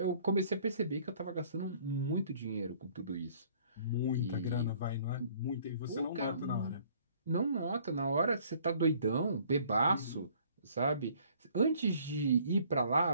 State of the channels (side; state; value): both; inverted; correlation -0.58